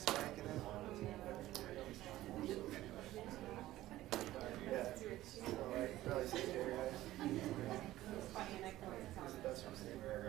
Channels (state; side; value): quieter; left; 15.5 dB